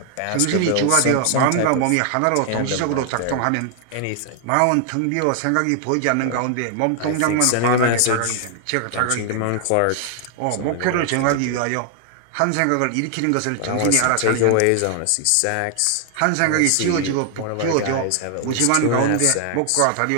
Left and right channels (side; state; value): both; different; correlation 0.00